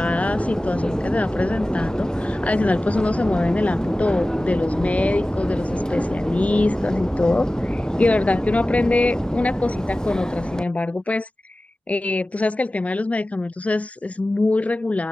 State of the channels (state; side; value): normal; both; correlation 0.96